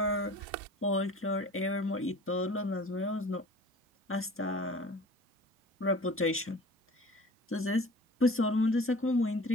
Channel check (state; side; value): normal; both; correlation 0.43